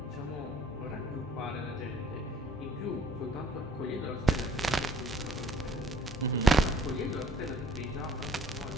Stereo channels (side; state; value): both; normal; correlation 0.57